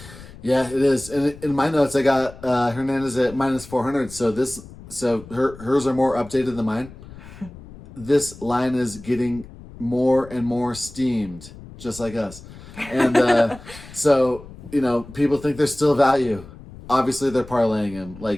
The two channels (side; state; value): left; noise; rumble, 17 dB below the sound